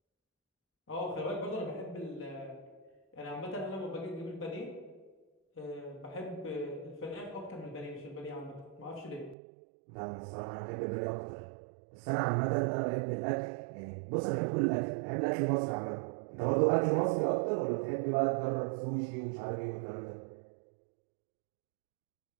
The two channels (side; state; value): left; drops out; at 9.3 s